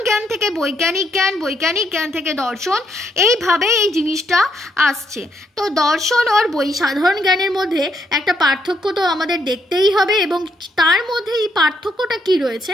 জ্ঞান থেকে বৈজ্ঞানিক জ্ঞান, বৈজ্ঞানিক জ্ঞান থেকে দর্শন, এইভাবে এই জিনিসটা আসছে। তো দর্শন আর সাধারণ জ্ঞানের মধ্যে একটা পার্থক্য তো আমাদের দেখতেই হবে, এবং তার মধ্যে এই পার্থক্যটা কি রয়েছে?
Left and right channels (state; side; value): normal; both; correlation 0.75